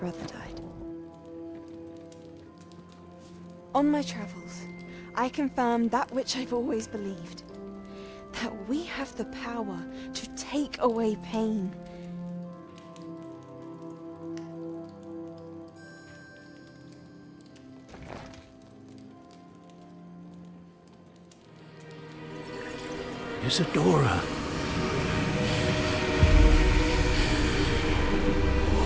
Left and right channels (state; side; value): identical; both; correlation 1.00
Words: died. On my travels, I confirmed that which I've always believed. That we have the power to take away pain. Isadora.